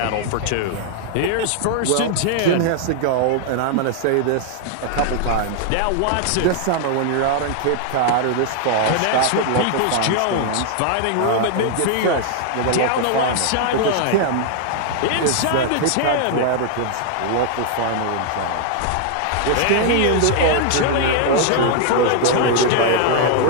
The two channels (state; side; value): different; both; correlation 0.00